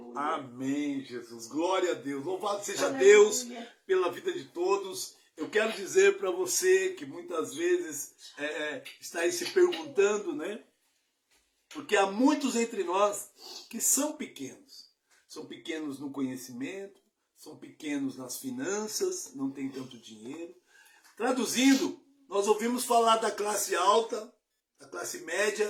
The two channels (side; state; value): both; identical; correlation 1.00